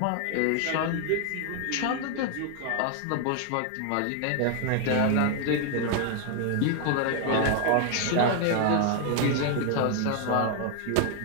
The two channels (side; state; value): both; different; correlation 0.00